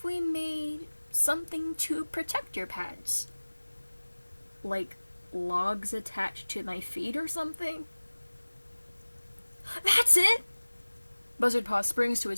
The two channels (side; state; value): both; inverted; correlation -1.00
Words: we made something to protect your pads? Like logs attached to my feet or something? That's it! Buzzardpaw springs to